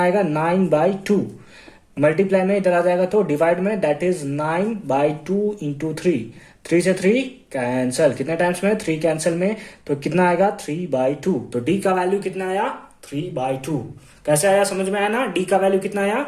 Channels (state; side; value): identical; both; correlation 1.00